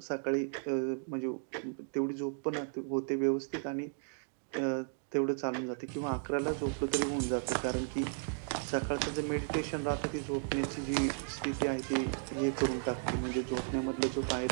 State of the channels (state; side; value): silent; left; digital silence